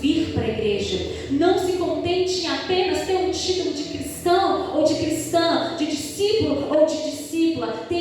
para a igreja. Não se contente em apenas ter um título de cristão ou de cristã, de discípulo ou de discípula.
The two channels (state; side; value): identical; both; correlation 1.00